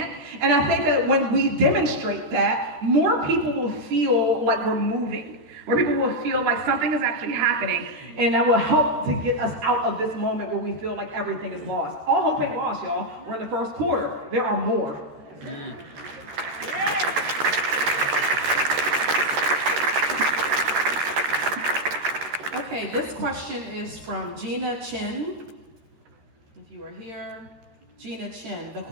And I think that when we demonstrate that, more people will feel like we're moving. Where people will feel like something is actually happening, and that will help to get us out of this moment where we feel like everything is lost. All hope ain't lost, y'all. We're in the first quarter. There are more. Okay, this question is from Gina Chin. If you are here, Gina Chin. The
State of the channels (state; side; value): late; left; 13 ms